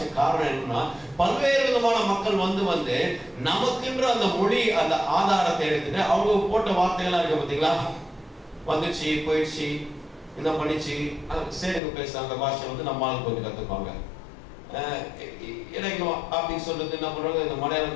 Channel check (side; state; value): right; drops out; at 11.8 s